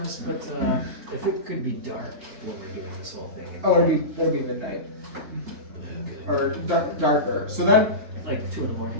But if it could be dark when we're doing this whole thing. Oh, it'll be midnight or darker. So then, Like 2 in the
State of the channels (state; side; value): late; left; 3.7 ms